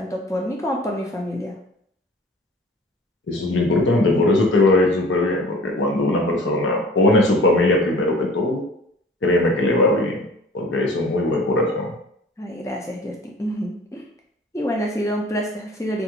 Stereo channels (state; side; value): normal; both; correlation 0.47